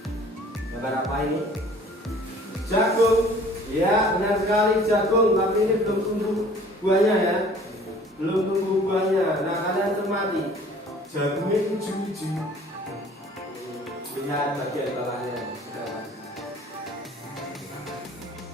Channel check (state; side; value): normal; both; correlation 0.51